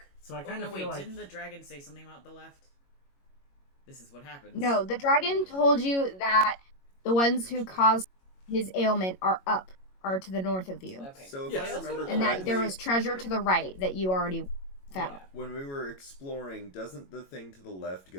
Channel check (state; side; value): late; right; 22 ms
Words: So I Oh, kind no, of wait, feel like didn't the dragon say something about the left? This is what happens. No, the dragon told you that the ones who caused his ailment are to the north of you. Okay. So if Yes. I remember And that there correctly, was treasure to the right that you already found. Yeah. when we were exploring, doesn't the thing to the left